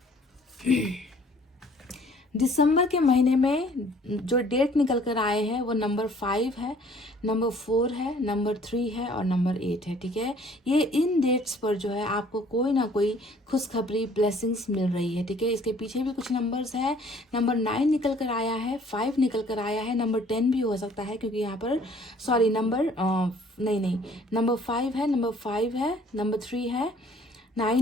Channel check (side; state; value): both; normal; correlation 0.57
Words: दिसंबर के महीने में जो डेट निकल कर आए हैं वो नंबर 5 है, नंबर 4 है, नंबर 3 है और नंबर 8 है, ठीक है। ये इन डेट्स पर जो है आपको कोई ना कोई खुशखबरी, ब्लेसिंग्स मिल रही है, ठीक है। इसके पीछे भी कुछ नंबर्स है, नंबर 9 निकल कर आया है, 5 निकल कर आया है, नंबर 10 भी हो सकता है क्योंकि यहाँ पर सॉरी नंबर नहीं नंबर 5 है, नंबर 5 है, नंबर 3 है,